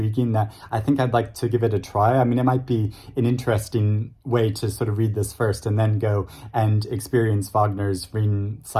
that I think I'd like to give it a try. I mean, it might be an interesting way to sort of read this first and then go and experience Wagner's Rein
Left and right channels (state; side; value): identical; both; correlation 1.00